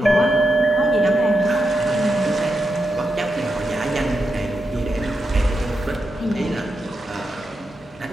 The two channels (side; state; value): both; normal; correlation 0.86